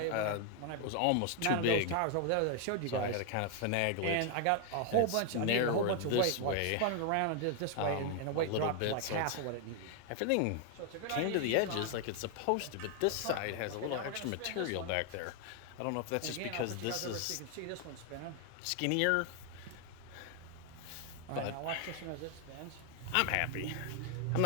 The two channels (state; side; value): different; both; correlation 0.00